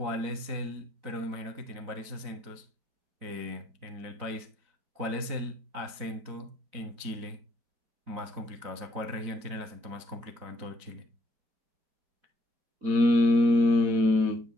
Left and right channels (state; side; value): late; left; 4.0 ms